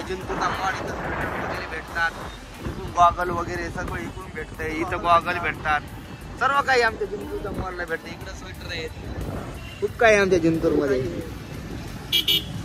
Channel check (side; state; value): both; identical; correlation 1.00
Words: मॉल. इथं वगैरे भेटतात. इथून गॉगल वगैरे सगळं इकडून भेटतंय. इथं गॉगल भेटतात. सर्व काही आमच्या जिंतूरच्या मॉलला भेटतं. इकडं स्वेटर आहेत. खूप काही आमच्या जिंतूरमध्ये.